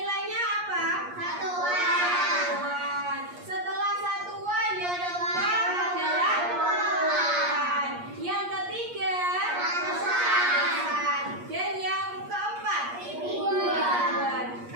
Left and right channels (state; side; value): late; left; 8.4 ms